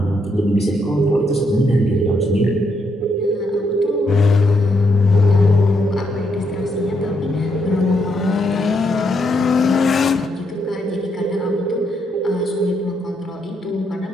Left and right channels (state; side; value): normal; both; correlation 0.77